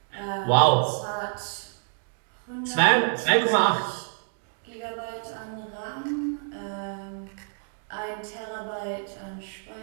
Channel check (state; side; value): silent; left; digital silence